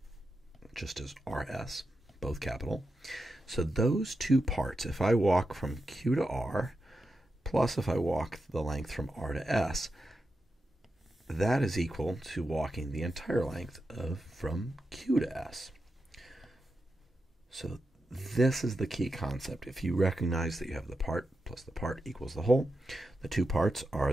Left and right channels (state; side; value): normal; both; correlation 0.89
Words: just as RS, both capital. So those two parts, if I walk from Q to R, plus if I walk the length from R to S, that is equal to walking the entire length of from Q to S. So this is the key concept. If you recognize that you have the part plus the part equals the whole, the two parts